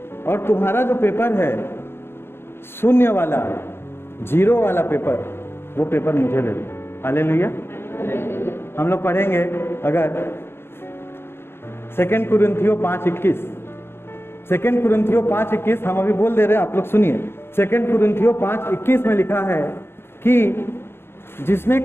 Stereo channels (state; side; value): late; right; 0.11 ms